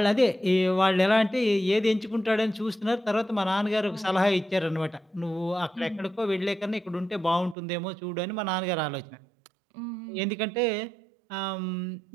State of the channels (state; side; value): drops out; left; at 7.6 s